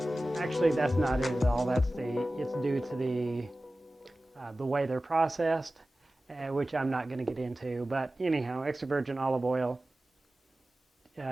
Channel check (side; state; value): both; normal; correlation 0.96